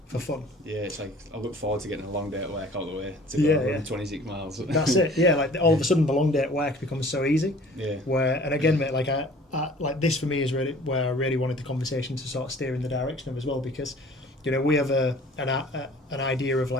for fun. Yeah, it's like I look forward to getting a long day at work all the way to go run 26 miles. That's it. Yeah, like all of a sudden the long day at work becomes so easy. Yeah. And again, mate, like I like this for me is really where I really wanted the conversation to sort of steer in the direction of as well, because we have an idea of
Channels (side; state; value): both; normal; correlation 0.49